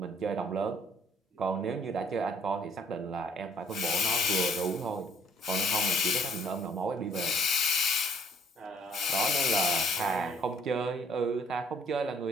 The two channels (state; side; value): normal; both; correlation 0.62